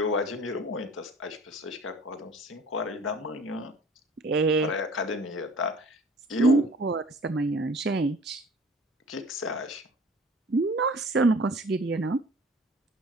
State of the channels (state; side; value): normal; both; correlation 0.47